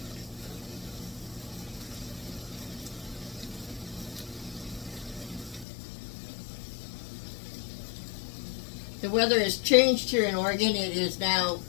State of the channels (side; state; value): right; drops out; at 5.7 s